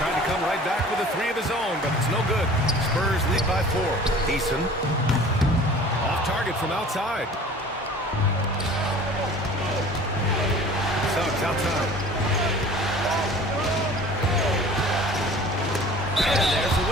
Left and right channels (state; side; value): normal; both; correlation 0.45